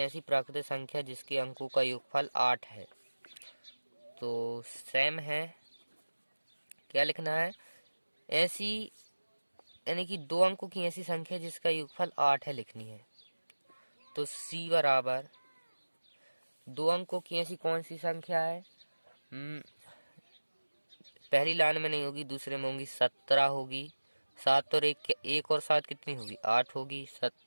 प्राकृतिक संख्या जिसके अंकों का योगफल 8 है। तो सेम है, क्या लिखना है? ऐसी यानी कि 2 अंकों की ऐसी संख्या जिसका योगफल 8 है लिखनी है। तो c बराबर 2 अंकों की ऐसी कौन सी संख्या है? पहली लाइन में नहीं होगी, दूसरे में होगी। 17 होगी। 7 और 1 और 7 कितनी होगी? 8 होगी।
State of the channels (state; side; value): inverted; both; correlation -1.00